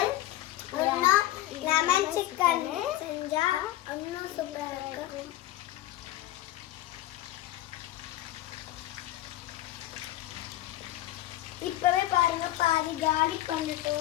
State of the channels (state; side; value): quieter; right; 15.0 dB